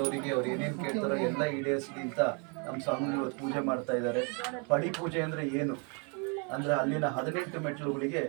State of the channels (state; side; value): quieter; left; 36.6 dB